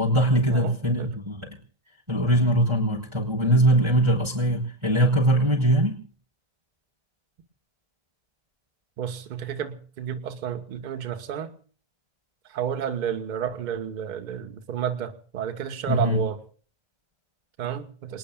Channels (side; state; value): left; late; 1.3 ms